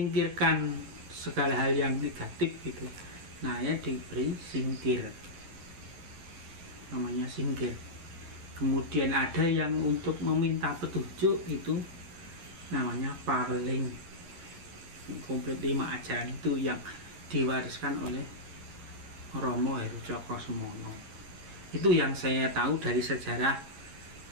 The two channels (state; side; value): late; left; 11 ms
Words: segala hal yang negatif gitu. Nah, ya diberi singkir, namanya singkir. Kemudian ada yang untuk meminta petunjuk, itu namanya paweling. Komplit 5 ajaran itu yang diwariskan oleh Romo Heru Cokrosemono. Itu yang saya tahu dari sejarah